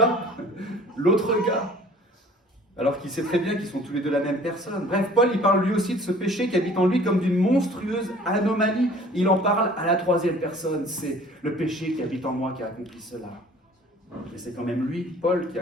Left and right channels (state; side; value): normal; both; correlation 0.50